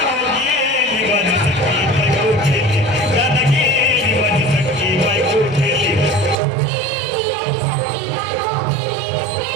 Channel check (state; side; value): drops out; left; at 6.4 s